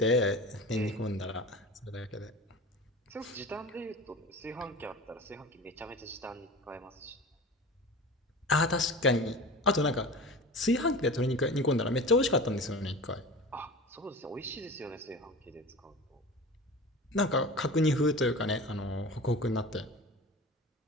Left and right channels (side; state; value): both; normal; correlation 0.35